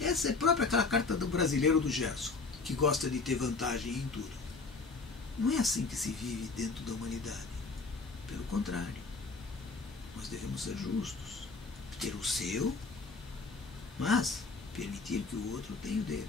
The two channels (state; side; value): quieter; right; 4.1 dB